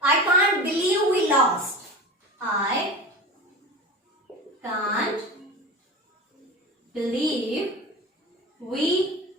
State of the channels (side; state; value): both; normal; correlation 0.31